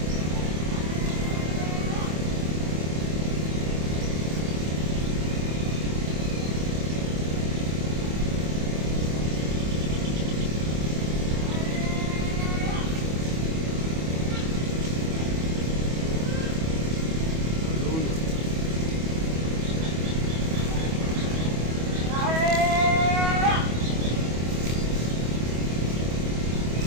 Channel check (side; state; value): left; late; 25 ms